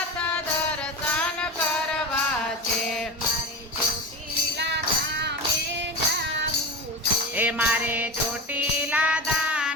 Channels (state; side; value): normal; both; correlation 0.25